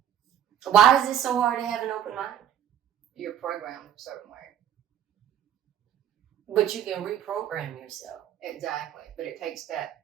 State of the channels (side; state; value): left; quieter; 10.0 dB